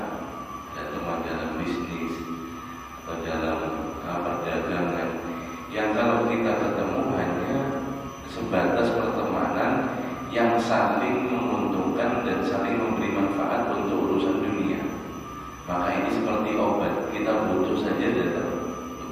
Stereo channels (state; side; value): identical; both; correlation 1.00